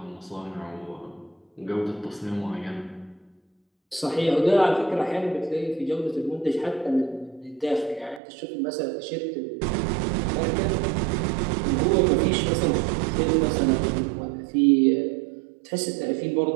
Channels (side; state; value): left; drops out; at 8.2 s